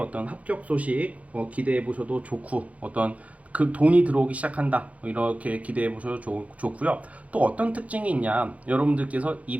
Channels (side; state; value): left; late; 0.067 ms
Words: 합격 소식 기대해 보셔도 좋고 어떤 그 돈이 들어오기 시작한다 이렇게 기대해 보셔도 좋고요. 또 어떤 특징이 있냐, 여러분들께서